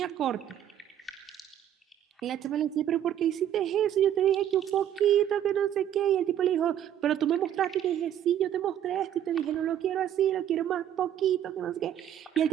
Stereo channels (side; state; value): left; quieter; 10.6 dB